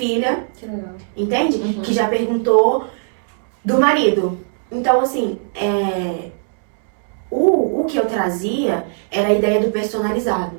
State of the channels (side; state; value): left; silent; 67 dB below the other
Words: Que legal. Entende? Que já perguntou do marido. Então assim, o que eu trazia era a ideia do